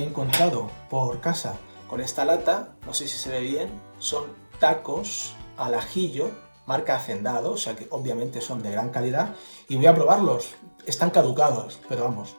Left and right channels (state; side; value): inverted; both; correlation -1.00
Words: he encontrado por casa con esta lata, no sé si se ve bien, son tacos al ajillo, marca Hacendado, o sea que obviamente son de gran calidad, y voy a probarlos. Están caducados, pero vamos,